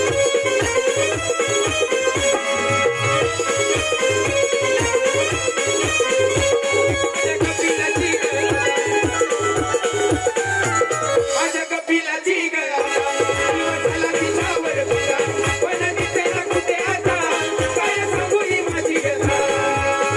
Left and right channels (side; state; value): both; identical; correlation 1.00